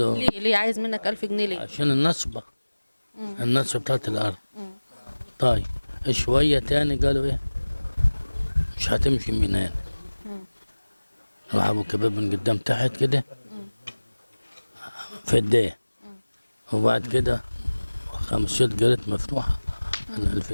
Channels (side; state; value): both; inverted; correlation -1.00